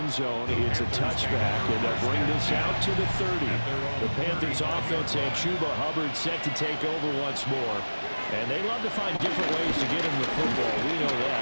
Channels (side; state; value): both; inverted; correlation -1.00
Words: zone. It's a touchback, and they'll bring this out to the 30. The Panthers offense and Chuba Hubbard set to take over once more. And they love to find different ways to get him the football. We know